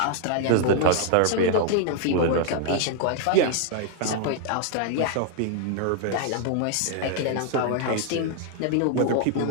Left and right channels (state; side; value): different; both; correlation 0.00